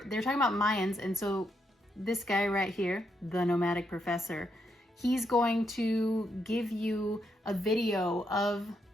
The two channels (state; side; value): normal; both; correlation 0.79